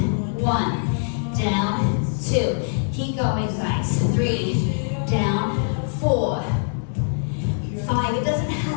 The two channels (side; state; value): right; silent; 63 dB below the other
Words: 1, down, 2. Keep going, guys. 3, down, 4, 5. It doesn't